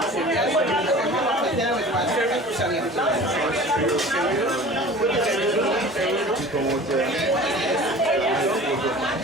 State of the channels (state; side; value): normal; both; correlation 0.41